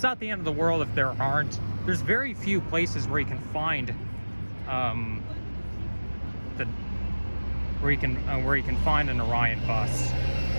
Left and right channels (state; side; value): inverted; both; correlation -1.00